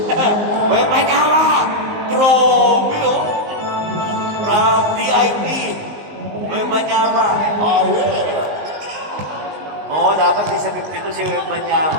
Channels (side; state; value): left; late; 19 ms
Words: May panyawa! Grabe, oh! From DIP. May panyawa. Oh, yeah. Oo, dapat di sa 52 si Web